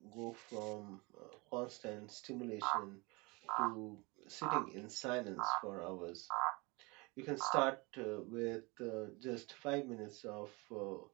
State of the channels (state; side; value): quieter; left; 26.4 dB